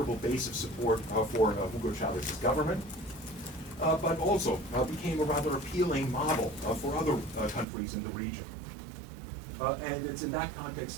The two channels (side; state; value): left; drops out; at 7.7 s